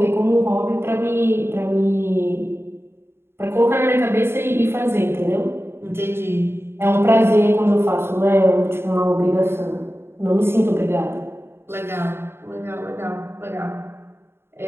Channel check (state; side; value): late; left; 0.12 ms